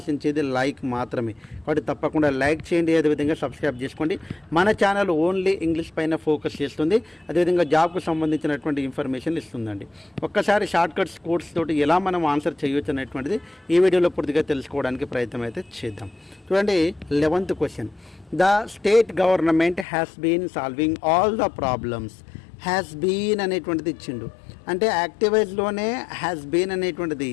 లైక్ మాత్రమే. కాబట్టి తప్పకుండా లైక్ చేయండి, అదేవిధంగా సబ్స్క్రైబ్ చేసుకోండి. మన ఛానల్ ఓన్లీ ఇంగ్లీష్ పైన ఫోకస్ చేస్తుంది, అదేవిధంగా జాబ్కు సంబంధించినటువంటి ఇన్ఫర్మేషన్ ఇస్తుందండి. ఒక్కసారి షార్ట్ కట్స్ కోడ్స్ తోటి ఎలా మనం ఆన్సర్ చేయొచ్చు అనేటువంటిది ఈ వీడియోలో పూర్తిగా తెలుసుకోవడానికి ప్రయత్నం అయితే చేద్దాం. చూడండి, 11th question. The state government has been solving all the problems. Has been అనేటువంటిది ఇచ్చిండు, అంటే యాక్టివైజ్లోనే హ్యాస్ బీన్ అనేటువంటిది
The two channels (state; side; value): drops out; right; at 19.9 s